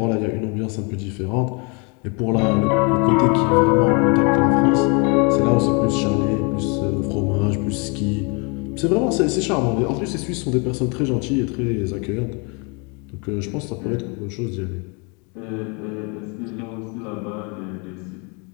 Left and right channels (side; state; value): right; quieter; 32.9 dB